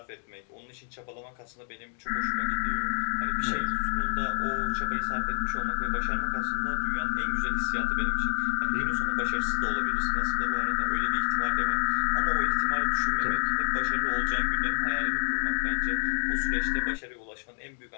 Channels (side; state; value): right; silent; 59 dB below the other